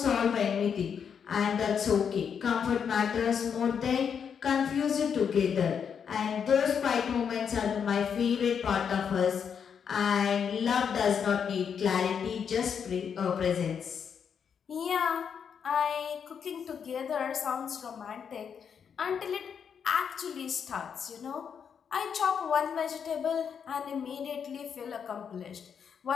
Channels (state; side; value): quieter; right; 7.2 dB